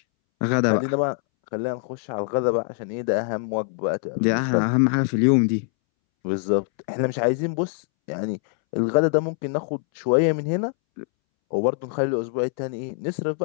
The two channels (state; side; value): silent; right; 63 dB below the other